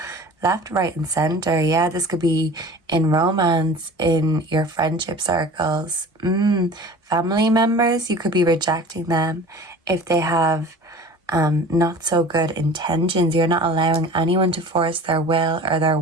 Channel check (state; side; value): normal; both; correlation 0.40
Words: left, right, and center. Yeah, this could be in romance, in your friendship circles. Family members, you could be rejecting them if they have not so good intentions. You're not allowing anyone to force their will or their